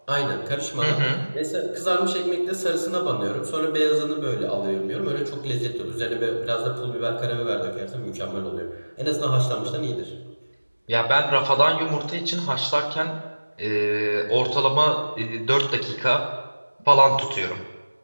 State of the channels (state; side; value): inverted; both; correlation -1.00